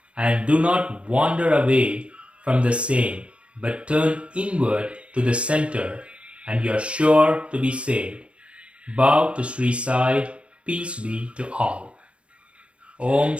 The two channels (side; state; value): left; late; 0.060 ms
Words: and do not wander away from the same, but turn inward to the center, and you are sure to be saved. Bow to Shri Sai, peace be to all. Om